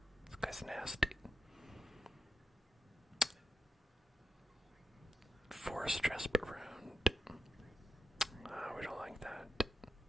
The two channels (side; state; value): both; normal; correlation 0.87